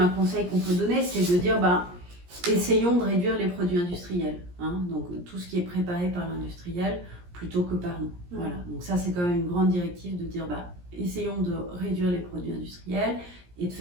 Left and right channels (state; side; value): late; left; 17 ms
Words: conseil qu'on peut donner, c'est de dire, bah, essayons de réduire les produits industriels. Hein, donc tout ce qui est préparé par l'industriel plutôt que par nous. Voilà. Donc ça, c'est quand même une grande directive de dire, bah, essayons de réduire les produits industriels et de